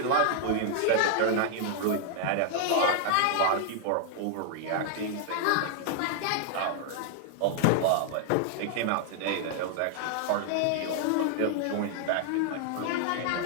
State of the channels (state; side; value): different; both; correlation 0.00